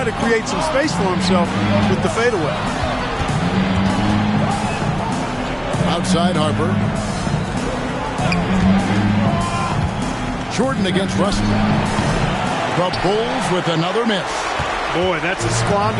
to create some space for himself with the fadeaway. Outside Harper. Jordan against Russell. The Bulls with another miss. Boy, that's a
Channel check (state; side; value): identical; both; correlation 1.00